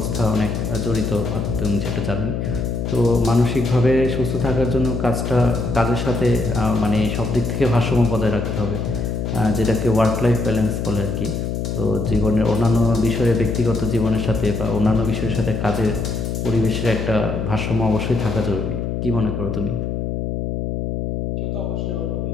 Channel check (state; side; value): noise; left; hum, 2 dB below the sound